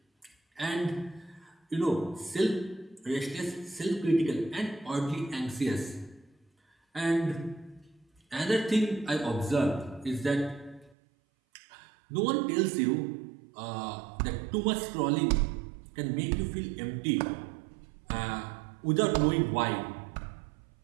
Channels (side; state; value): left; drops out; at 11.0 s